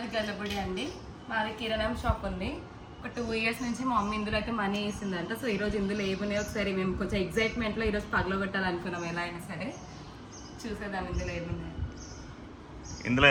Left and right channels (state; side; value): identical; both; correlation 1.00